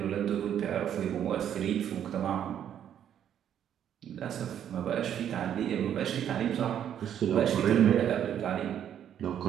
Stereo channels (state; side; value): quieter; left; 9.7 dB